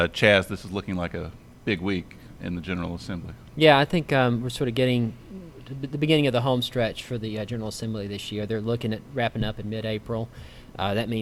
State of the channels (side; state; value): both; identical; correlation 1.00